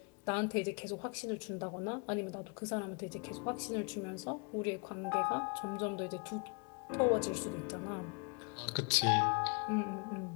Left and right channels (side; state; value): right; quieter; 33.1 dB